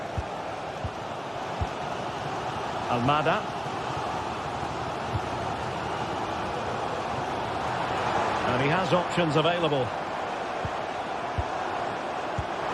Almada. And he has options available.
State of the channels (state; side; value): identical; both; correlation 1.00